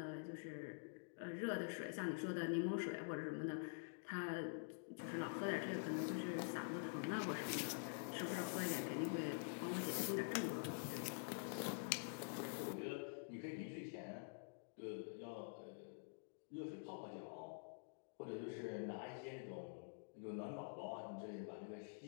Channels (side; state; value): right; silent; digital silence